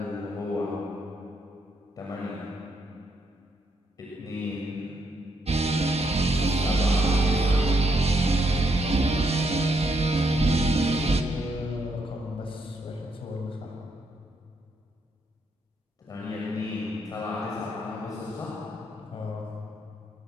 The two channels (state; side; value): normal; both; correlation 0.77